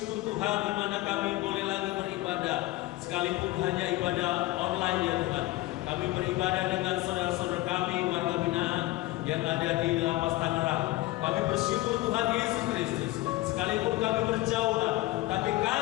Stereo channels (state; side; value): quieter; right; 18.5 dB